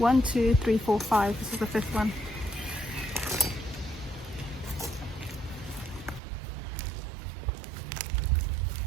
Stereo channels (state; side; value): drops out; left; at 6.2 s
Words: 2, 3, 4, 5. This is the fifth one.